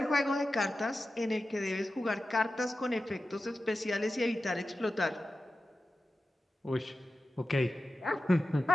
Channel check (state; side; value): normal; both; correlation 0.93